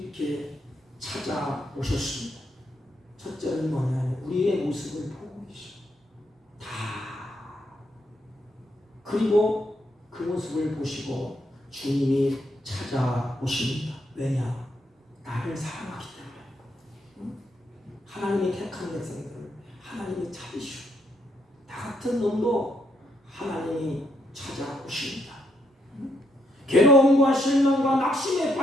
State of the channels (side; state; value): both; normal; correlation 0.76